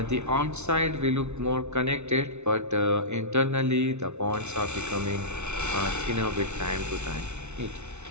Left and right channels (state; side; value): late; left; 0.82 ms